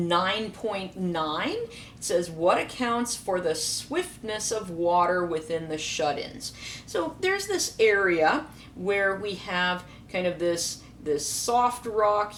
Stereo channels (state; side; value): identical; both; correlation 1.00